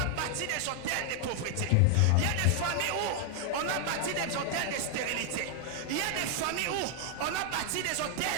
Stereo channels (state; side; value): different; both; correlation 0.00